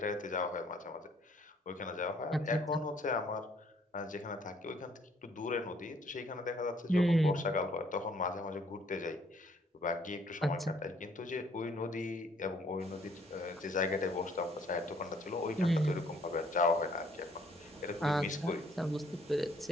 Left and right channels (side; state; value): both; normal; correlation 0.63